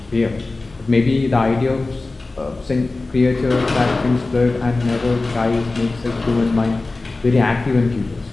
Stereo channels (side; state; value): right; quieter; 3.3 dB